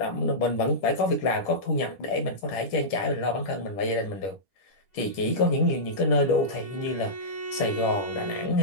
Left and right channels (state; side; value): late; right; 10 ms